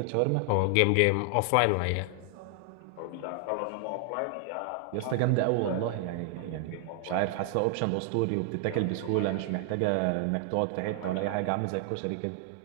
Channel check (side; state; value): both; different; correlation 0.00